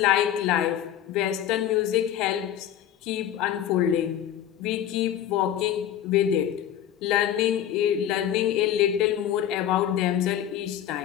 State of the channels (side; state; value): right; quieter; 10.8 dB